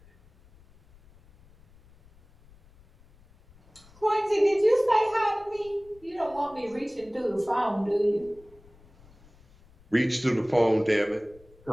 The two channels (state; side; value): noise; left; rumble, 27 dB below the sound